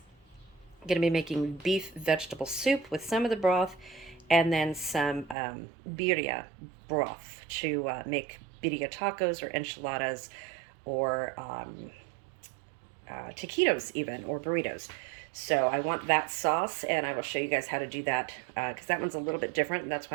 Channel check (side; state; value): left; drops out; at 5.4 s